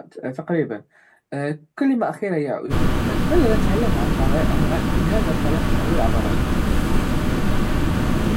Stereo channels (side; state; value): both; identical; correlation 1.00